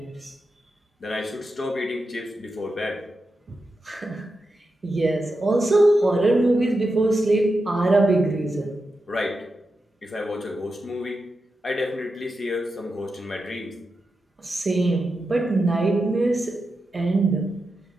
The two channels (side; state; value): both; normal; correlation 0.89